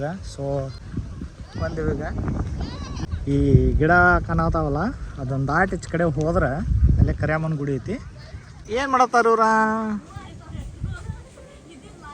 ಸೊ ಬಂದಿವಿ. ಈಗ ಈ ಗಿಡ ಕಾಣತಾವಲ್ಲ ಅದೊಂದು ದಾಟಿ ಈಚೆ ಕಡೆ ಹೋದ್ರೆ ಅಲ್ಲೇ ಕರ್ಯಾಮನ ಗುಡಿ ಐತಿ. ಏನು ಮಾಡತ್ತಾರ ಇವ್ರ?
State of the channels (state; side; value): identical; both; correlation 1.00